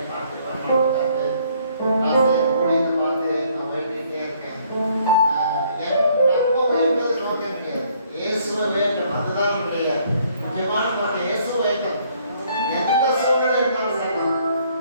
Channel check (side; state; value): both; inverted; correlation -0.64